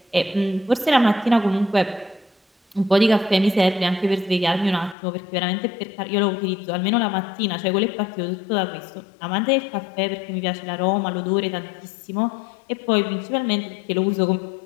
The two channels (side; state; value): right; drops out; at 5.0 s